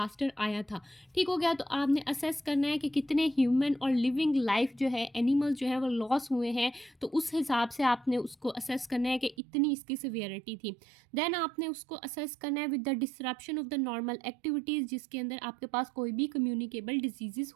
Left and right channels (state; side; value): drops out; left; at 9.3 s